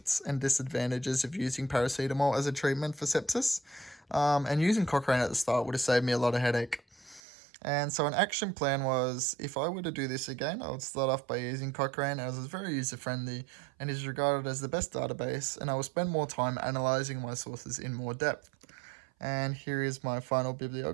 and disadvantages of using paracetamol as a treatment for sepsis. And using Cochrane at the start would have saved me a lot of headache. And so, an action plan was if I were to do this again, I would start off by using Cochrane as it's very user friendly and is regarded as the best database, and I will spend more time analyzing my sources in more depth. And here is my final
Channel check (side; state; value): left; drops out; at 7.2 s